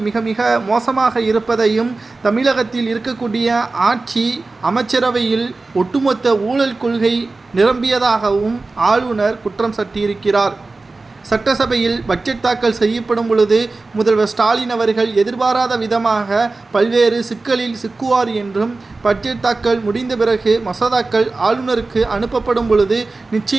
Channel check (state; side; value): quieter; left; 3.5 dB